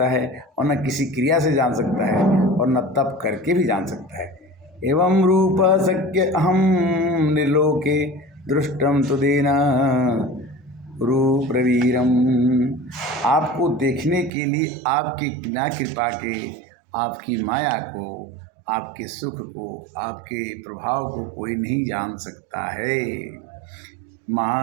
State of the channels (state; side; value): drops out; left; at 14.3 s